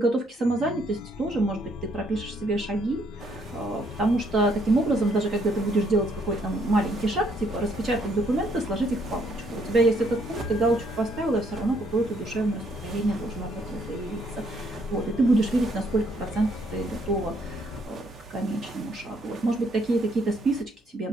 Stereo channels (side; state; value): both; normal; correlation 0.69